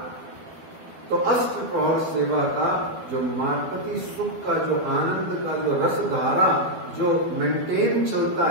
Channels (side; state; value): left; late; 12 ms